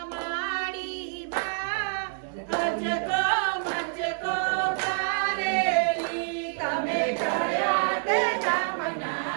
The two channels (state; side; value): silent; left; digital silence